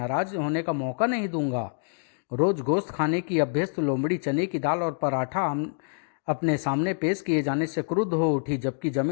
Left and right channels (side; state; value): right; silent; digital silence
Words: होने का मौका नहीं दूंगा। रोज गोश्त खाने की अभ्यस्त लोमड़ी चने की दाल और पराठा अपने सामने पेश किए जाने से क्रुद्ध हो उठी, जबकि